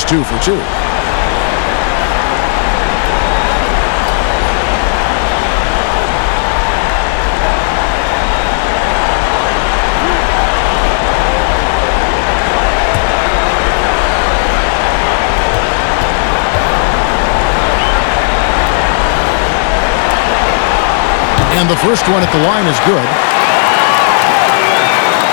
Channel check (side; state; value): right; silent; 73 dB below the other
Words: 2 for 2. And the first one at the line is good.